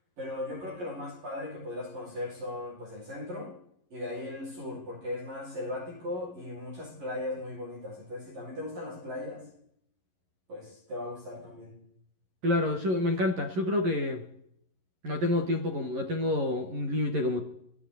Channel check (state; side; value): late; left; 11 ms